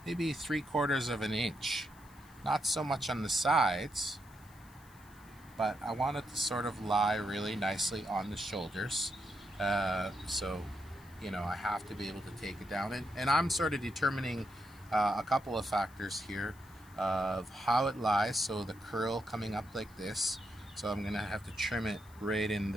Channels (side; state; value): left; noise; hiss, 26 dB below the sound